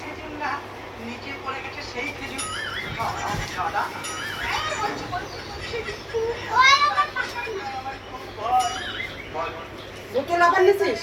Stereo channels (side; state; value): both; identical; correlation 1.00